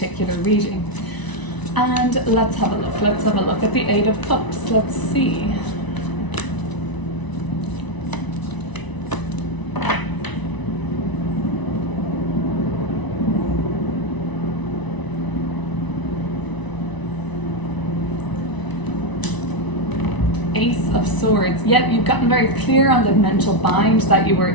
reading. And let's have a look. Let's have a look at the Eight of Cups. Let's see. Ace of Swords. Yep, you've gotten very clear on the mental bind that you were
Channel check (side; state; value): right; late; 1.0 ms